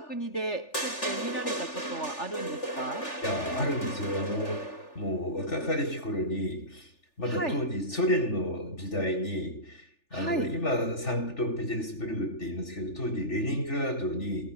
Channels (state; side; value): late; right; 3.4 ms